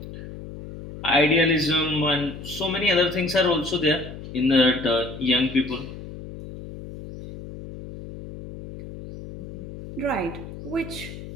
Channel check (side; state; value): left; noise; hum, 12 dB below the sound